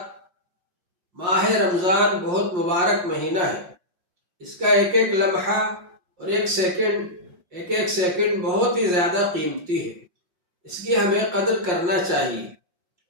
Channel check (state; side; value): late; left; 5.6 ms